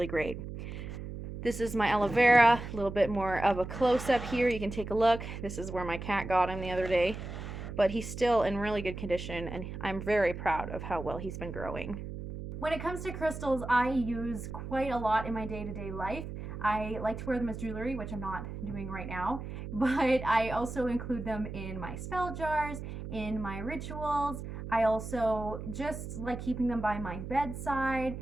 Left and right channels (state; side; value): noise; right; hum, 8 dB below the sound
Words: great. This is my aloe vera, a little bit more of a close-up here. You can take a look. This is where my cat got him the other day. But he's still in really good condition, and I'm very proud of how well he's been growing. When it comes to crystals, I use quite a lot in my day-to-day life. I like to wear them as jewelry, which I'm not doing right now, but I also include them in my spell jars, in my rituals. I also just like keeping them by my bedside,